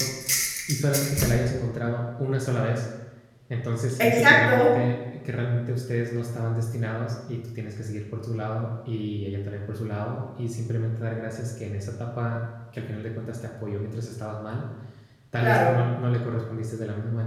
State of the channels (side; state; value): both; identical; correlation 1.00